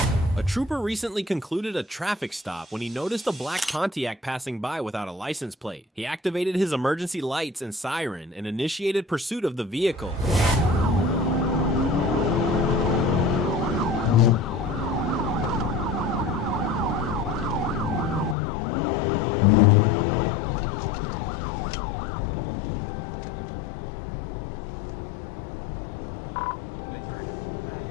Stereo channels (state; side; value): drops out; right; at 18.4 s